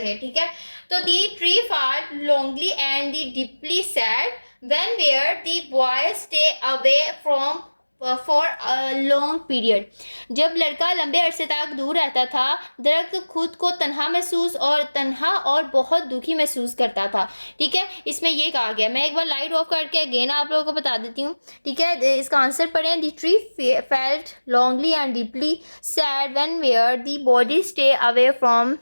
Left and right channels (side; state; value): both; inverted; correlation -1.00